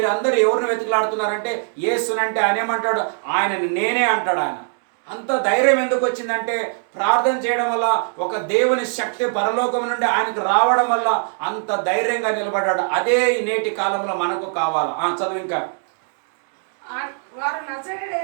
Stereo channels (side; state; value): left; silent; 65 dB below the other